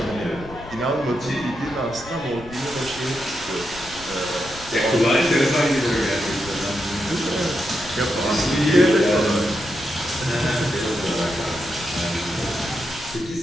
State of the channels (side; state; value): left; noise; rumble, 17 dB below the sound